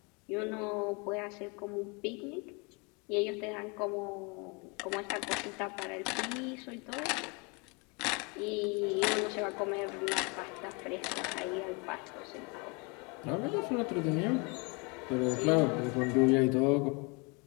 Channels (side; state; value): right; quieter; 30.8 dB